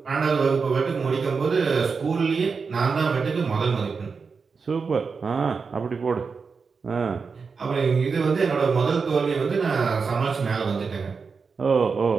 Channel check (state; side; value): quieter; left; 5.1 dB